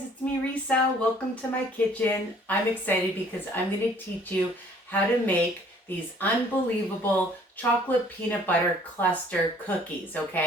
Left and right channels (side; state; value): both; normal; correlation 0.57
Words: it's me Risa. Welcome to my kitchen. I'm excited because I'm going to teach you how to make these unbelievable chocolate peanut butter cluster cookies,